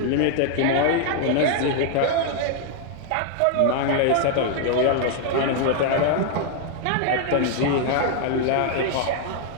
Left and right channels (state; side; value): different; both; correlation 0.00